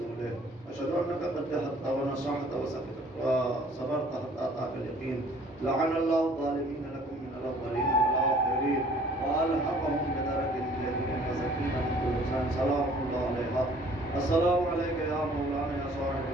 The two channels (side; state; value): both; normal; correlation 0.55